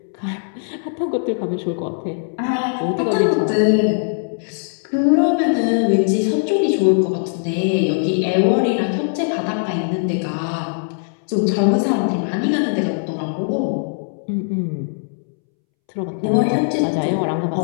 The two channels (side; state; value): right; silent; 66 dB below the other